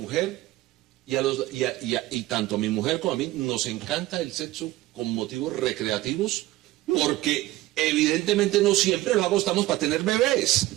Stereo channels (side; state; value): left; quieter; 17.0 dB